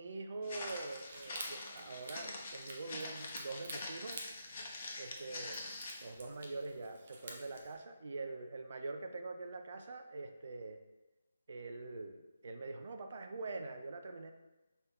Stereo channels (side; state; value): both; inverted; correlation -0.81